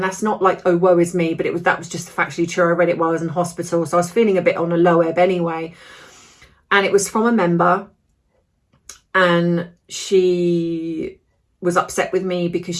that's not like, oh, woe is me, but that was just factually true. I read it while I was in hospital, so I was feeling a bit on a low ebb anyway. And it was from a member, and she was upset with me because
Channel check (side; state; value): both; identical; correlation 1.00